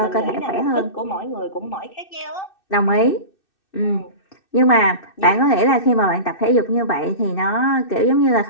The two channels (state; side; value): late; right; 2.6 ms